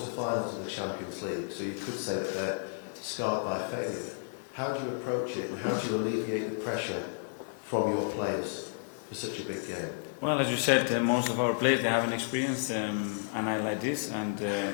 of the Champions League, so you could say that they're scarred by failure. How do you approach it, and how do you alleviate the pressure from your players for such a big game? Well, as you said, most of our players, they haven't experienced a night like this,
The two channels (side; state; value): right; silent; 57 dB below the other